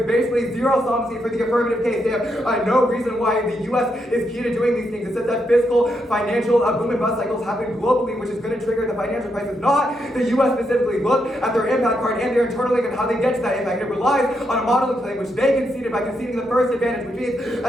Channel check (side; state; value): both; normal; correlation 0.80